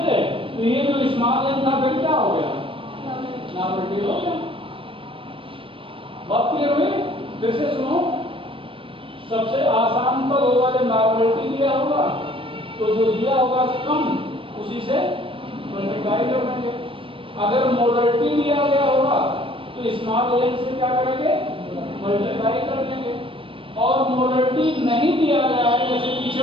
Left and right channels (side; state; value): left; late; 0.25 ms